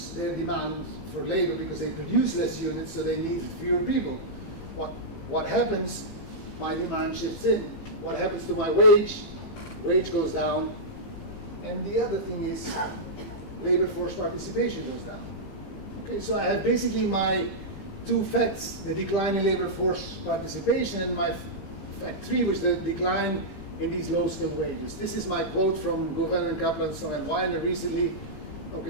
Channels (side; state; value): right; late; 15 ms